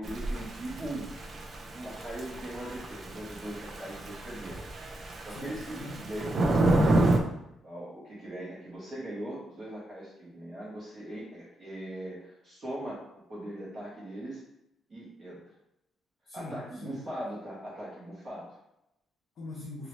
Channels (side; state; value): both; normal; correlation 0.85